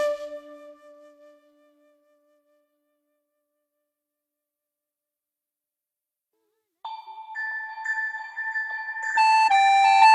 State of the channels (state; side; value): identical; both; correlation 1.00